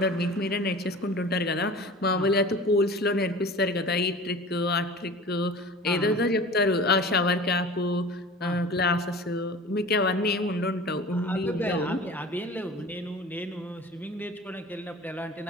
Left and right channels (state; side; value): normal; both; correlation 0.39